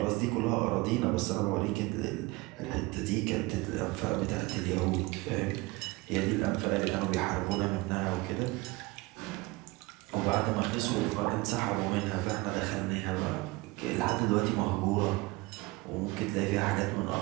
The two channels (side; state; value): left; quieter; 22.8 dB